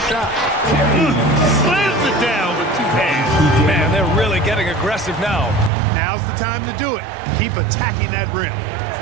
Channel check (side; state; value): left; drops out; at 5.7 s